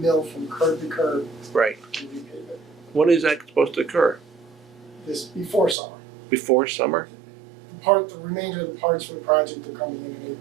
from curb to curb Right. and repave it. When is that supposed to occur? This before summer. Before summer? The remainder of the parts for the project are coming in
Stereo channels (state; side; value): drops out; left; at 5.8 s